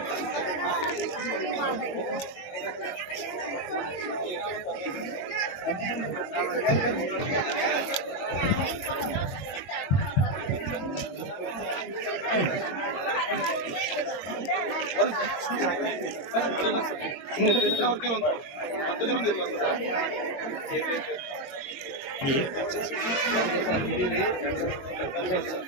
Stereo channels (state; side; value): late; right; 22 ms